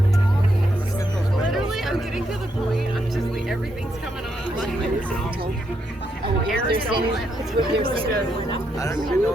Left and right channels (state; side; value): normal; both; correlation 0.79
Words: Literally, I'm getting to the point. I'm just like, everything's coming off. Oh, they're saying it's what they're saying. I don't even know